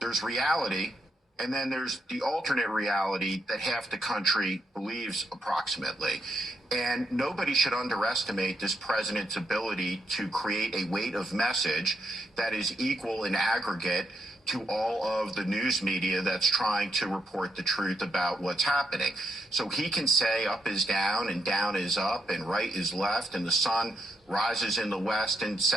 reality, and then there's the alternate reality that half the country believes approximately. And nobody should underestimate this president's ability to create a weight of message that is equal in aggregate to all of the news media that's trying to report the truth about what's happening. So he can say up is down and down is up and right is left and the sun rises in the west and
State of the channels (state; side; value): normal; both; correlation 0.79